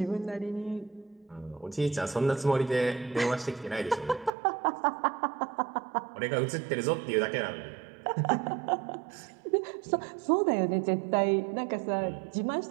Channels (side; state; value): left; drops out; at 4.3 s